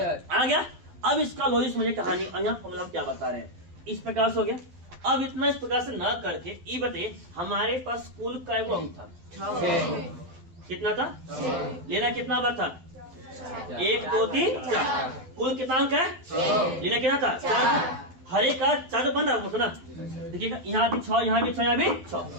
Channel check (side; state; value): left; late; 12 ms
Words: आ गया। अब इसका लॉजिक समझिए कहानी। यहाँ फॉर्मूला हम क्या बता रहे हैं, इस प्रकार से हो गया। अब इतना इस प्रकार से न करके ये बताइए हमारे पास कुल का अंक था, कितना था, लेना कितना बार था, 1 2 3 4। कुल कितना अंक है, लेना कितना था, 4। हर एक का 4 बन रहा है ना, देखिएगा यहाँ भी 6, यहाँ भी 6, यहाँ भी 6।